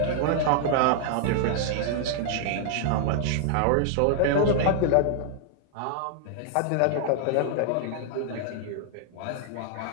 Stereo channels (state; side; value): different; both; correlation -0.01